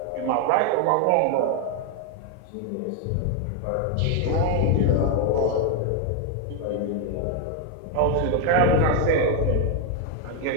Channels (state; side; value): different; both; correlation 0.01